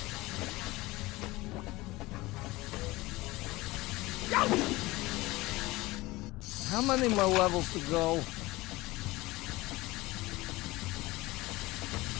How many more levels to go?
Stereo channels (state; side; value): quieter; right; 20.3 dB